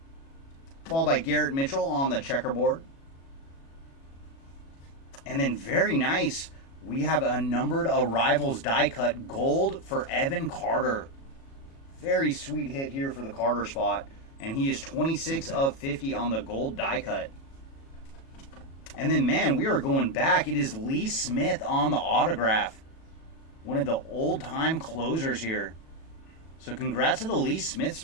Followed by Garrett Mitchell on the checkerboard. And then very nice, we have a numbered Arrivals die cut gold for Evan Carter. Very sweet hit here for the Carter spot. And he is 26 of 50 on the gold die cut. And then, man, we are going back. It is Lee Smith on the autograph. One of the old-time closers here. So congrats to the Lee Smith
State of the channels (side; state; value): right; late; 36 ms